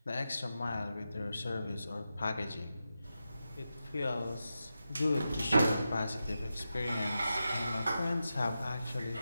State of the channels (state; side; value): inverted; both; correlation -0.90